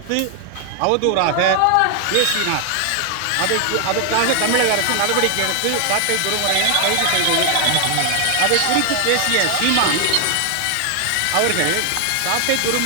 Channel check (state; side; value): different; both; correlation 0.00